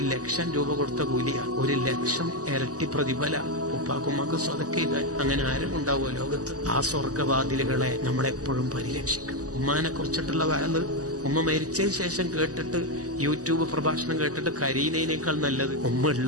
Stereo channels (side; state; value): left; late; 0.67 ms